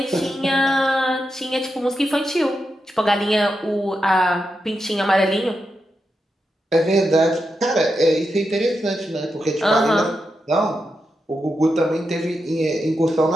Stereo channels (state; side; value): normal; both; correlation 0.87